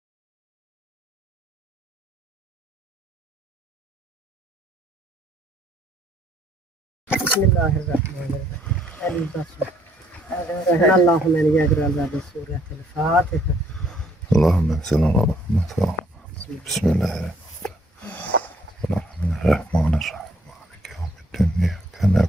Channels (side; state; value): both; normal; correlation 0.65